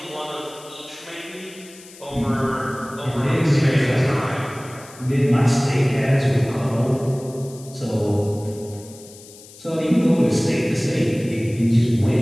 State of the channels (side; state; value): left; noise; hiss, 20 dB below the sound